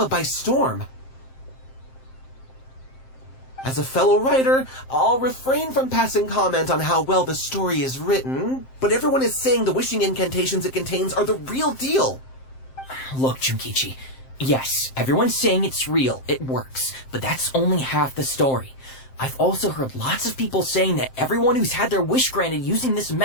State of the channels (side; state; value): right; late; 7.6 ms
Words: by storm. As a fellow writer, I'll refrain from passing comment on how well the story is written, but everyone is saying the wishing incantations it contains are the real deal. Look, Junkichi, yes, everyone's saying it's real, it works, but that's only half the story. I've also heard lots of people saying that everyone who's had their wish granted using this